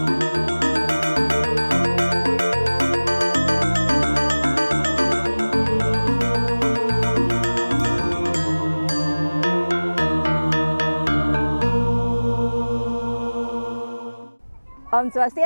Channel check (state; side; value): inverted; both; correlation -1.00